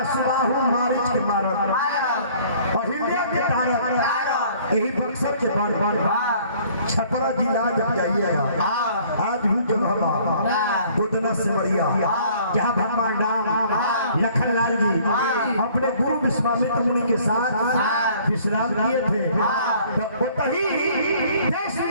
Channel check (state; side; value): inverted; both; correlation -0.56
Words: सुबाहु मारिच के मारत अहिल्या के तारक यही बक्सर के बड़ छपरा जिला जब जाइएगा आज भी जगह गोदना से बढ़िया जहाँ भगवान राम लखन लाल जी अपने गुरु विश्वामित्र मुनि के साथ विश्राम किए थे तब वही देश